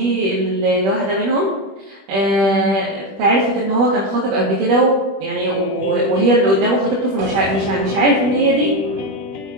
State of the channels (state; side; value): late; left; 20 ms